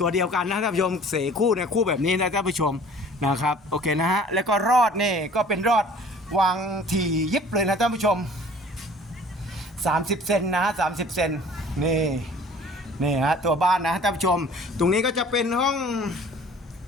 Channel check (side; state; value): both; normal; correlation 0.49